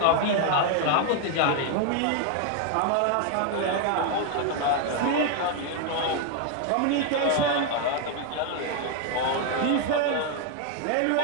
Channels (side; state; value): both; different; correlation 0.01